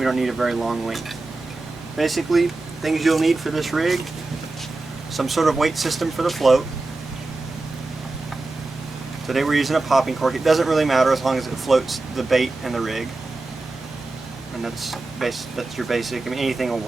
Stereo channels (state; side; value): quieter; left; 3.3 dB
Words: don't need a very long length. Basically, things you'll need for this rig: some sort of weight system for the float. Today we're using a popping cork. It doesn't really matter as long as it floats the bait and the rig, and that's your basic. I mean, anything will